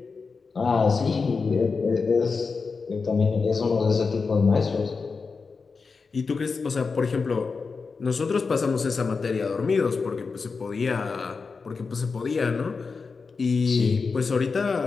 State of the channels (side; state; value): right; quieter; 4.7 dB